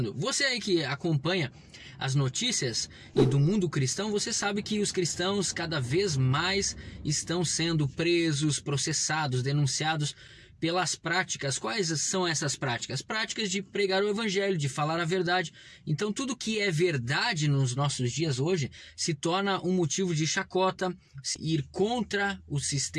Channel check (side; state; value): both; identical; correlation 1.00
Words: Você aí que acompanha as notícias e do mundo cristão, você sabe que os cristãos cada vez mais estão sendo presos, processados, denunciados pelas práticas. Quais são essas práticas? Práticas de pregar o evangelho, de falar a verdade. Então tudo que é verdade nos nossos dias hoje se torna um motivo de chacota, ir contra o